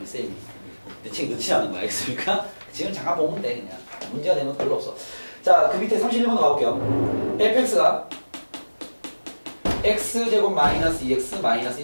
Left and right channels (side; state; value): both; inverted; correlation -1.00